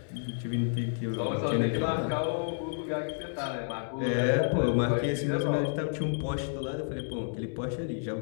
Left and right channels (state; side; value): silent; right; digital silence